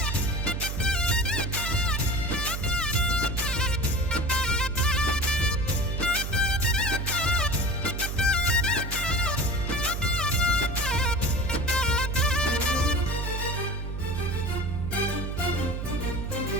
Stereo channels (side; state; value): right; noise; hum, 4 dB below the sound